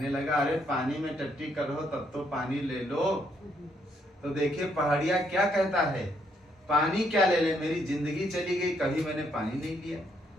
लगा अरे पानी में टट्टी करो तब तो पानी ले लो। तो देखिए पहाड़िया क्या कहता है, पानी क्या ले ले, मेरी जिंदगी चली गई, कभी मैंने पानी नहीं लिया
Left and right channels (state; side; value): normal; both; correlation 0.73